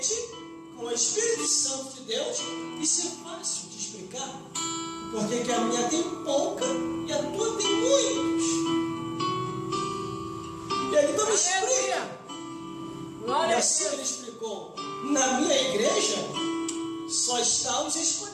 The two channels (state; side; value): identical; both; correlation 1.00